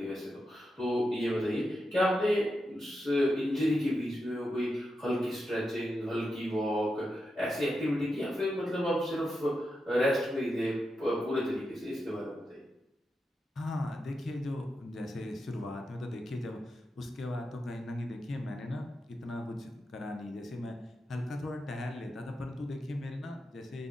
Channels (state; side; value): normal; both; correlation 0.87